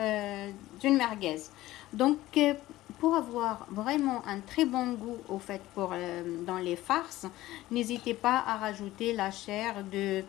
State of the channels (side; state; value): right; quieter; 16.4 dB